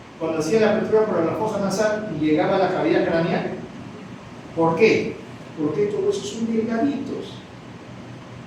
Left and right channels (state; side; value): identical; both; correlation 1.00